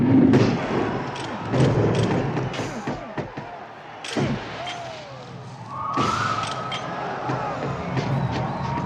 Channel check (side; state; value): both; identical; correlation 1.00